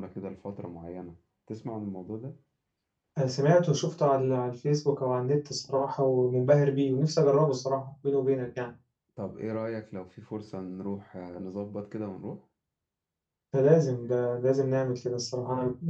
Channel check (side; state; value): both; identical; correlation 1.00